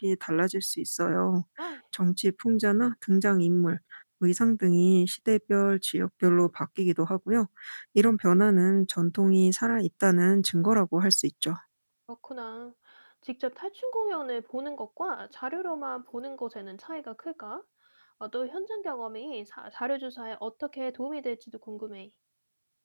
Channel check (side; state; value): both; inverted; correlation -1.00